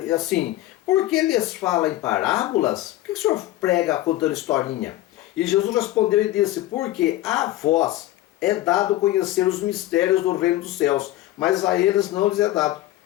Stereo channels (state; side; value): quieter; right; 15.5 dB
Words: assim: por que lhes fala em parábolas? Por que o senhor prega contando historinha? E Jesus respondeu e disse: porque a vós é dado conhecer os mistérios do reino dos céus, mas a eles não lhes é dado.